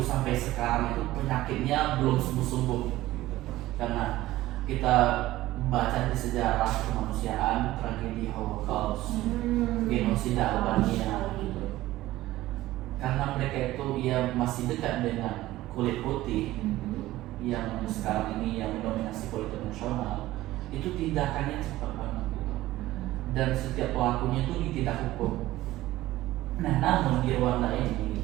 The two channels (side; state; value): left; quieter; 16.3 dB